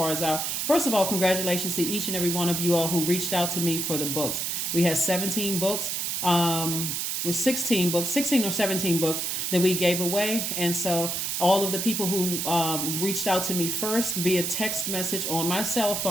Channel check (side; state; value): right; noise; hiss, 1 dB below the sound